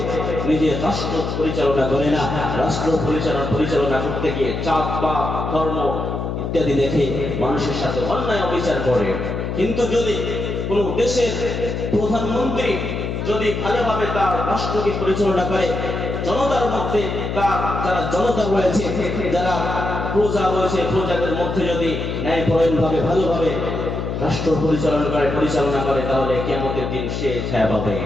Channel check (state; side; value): noise; left; hum, 3 dB below the sound